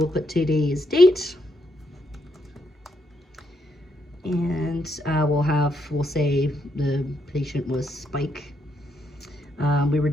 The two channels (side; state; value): both; normal; correlation 0.77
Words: put today's date. And we'll say the patient was Spike. We were